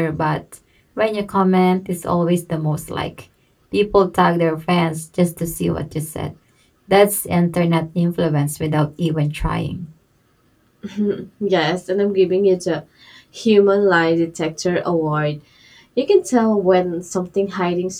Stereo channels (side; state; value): both; identical; correlation 1.00